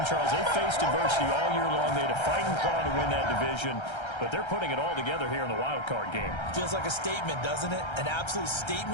Charles. They faced adversity all year long. They had to fight and claw to win that division. But they're putting it all together here in the wild card game. Feels like a statement, doesn't it? An absolute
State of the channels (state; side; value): late; right; 1.3 ms